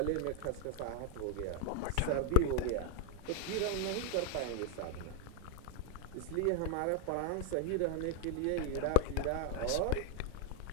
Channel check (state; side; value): different; both; correlation 0.00